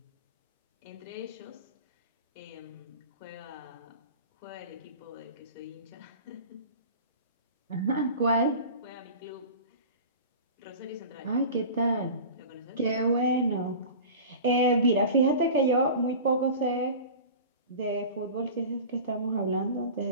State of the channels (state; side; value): inverted; both; correlation -0.35